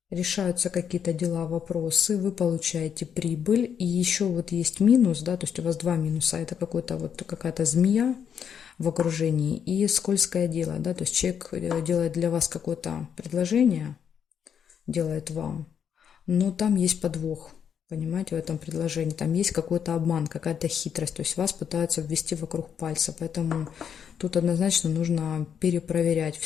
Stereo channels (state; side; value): quieter; right; 7.9 dB